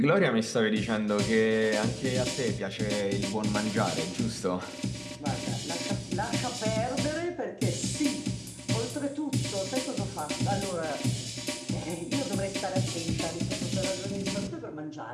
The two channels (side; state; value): both; identical; correlation 1.00